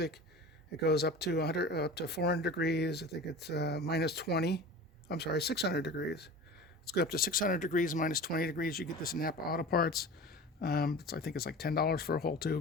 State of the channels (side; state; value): both; normal; correlation 0.36